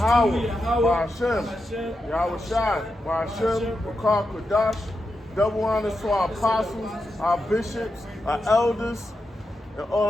Ba'ashem, Yahweh Shai, Ba'ashem, Bakar Kodash. Double honors to our apostles, our bishops, our elders, and all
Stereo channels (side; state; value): both; normal; correlation 0.88